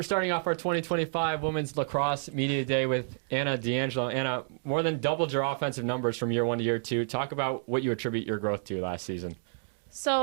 starting off our 2025 Women's Lacrosse Media Day with Anna D'Angelo. Anna, more than doubled your offensive numbers from year one to year two. Talk about what you attribute your growth to last season.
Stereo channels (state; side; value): silent; left; digital silence